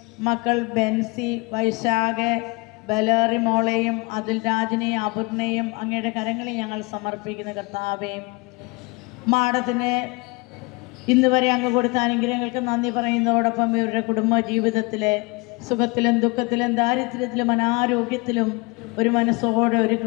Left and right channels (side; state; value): right; quieter; 26.8 dB